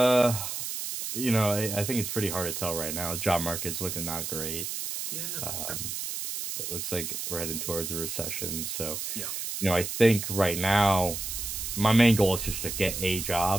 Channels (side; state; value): right; noise; hiss, 5 dB below the sound